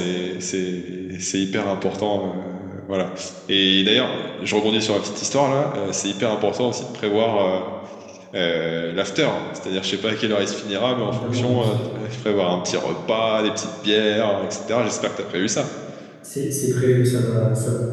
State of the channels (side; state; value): both; identical; correlation 1.00